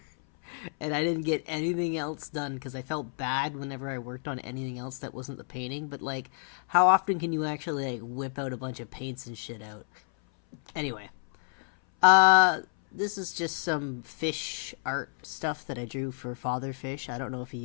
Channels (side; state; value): right; silent; 58 dB below the other